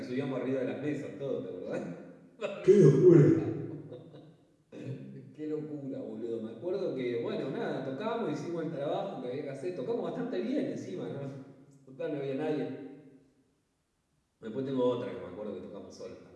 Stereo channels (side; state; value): both; identical; correlation 1.00